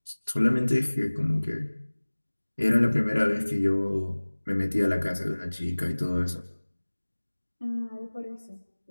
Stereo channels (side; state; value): both; inverted; correlation -1.00